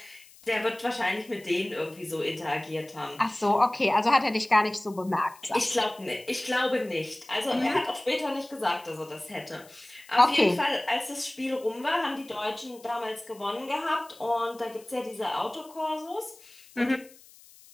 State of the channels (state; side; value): noise; left; hiss, 23 dB below the sound